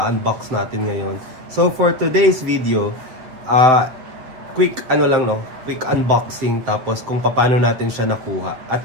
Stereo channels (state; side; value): late; left; 8.2 ms